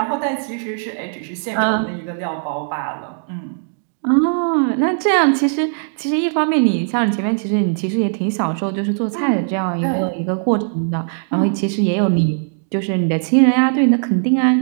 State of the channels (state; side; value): silent; left; digital silence